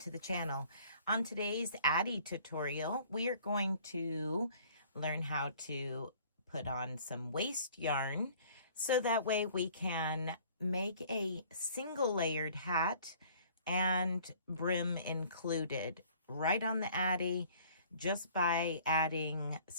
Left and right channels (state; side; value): inverted; both; correlation -0.54